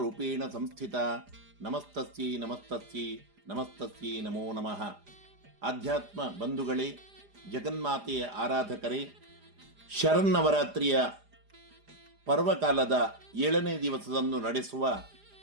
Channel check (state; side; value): late; left; 4.9 ms